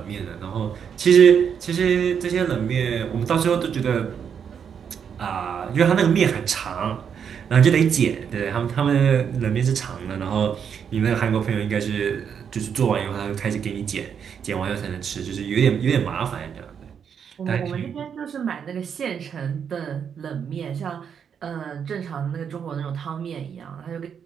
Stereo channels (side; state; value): left; quieter; 7.5 dB